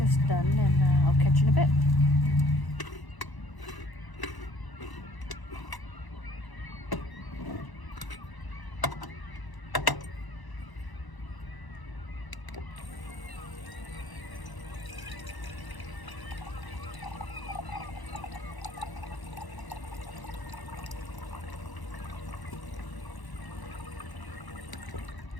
done and I'll catch you in a bit.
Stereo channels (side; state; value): right; late; 1.0 ms